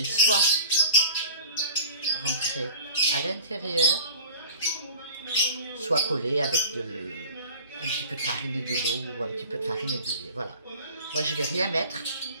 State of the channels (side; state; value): both; inverted; correlation -0.43